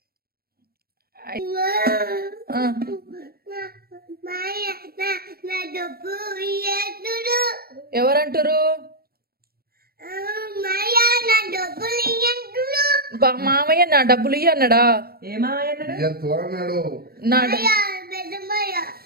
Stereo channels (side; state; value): left; late; 0.44 ms